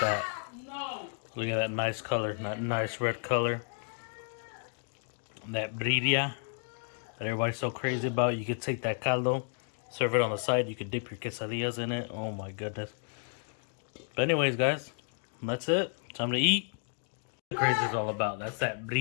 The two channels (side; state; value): right; silent; 56 dB below the other